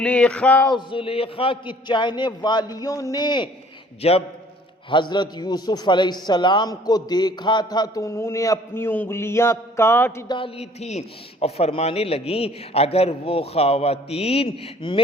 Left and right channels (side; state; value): both; normal; correlation 0.55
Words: کی چاہنے والیوں نے جب حضرت یوسف علیہ السلام کو دیکھا تھا تو انہوں نے اپنی انگلیاں کاٹ ڈالی تھی اور فرمانے لگیں اگر وہ خواتین